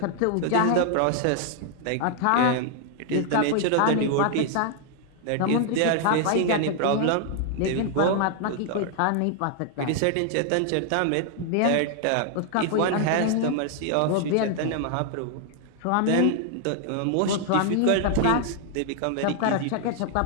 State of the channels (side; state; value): both; different; correlation 0.00